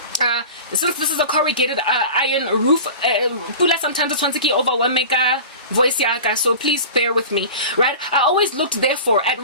since this is a corrugated iron roof, pula sometimes it's one overwhelming voice yaka, so please bear with me, right? I always looked therefore at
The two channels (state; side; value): inverted; both; correlation -0.35